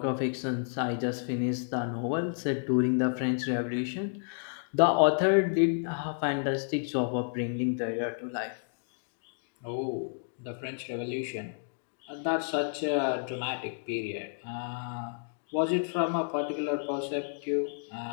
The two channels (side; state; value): right; silent; digital silence